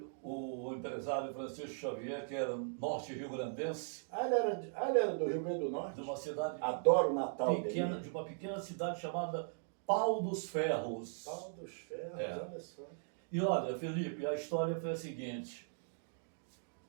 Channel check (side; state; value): left; silent; digital silence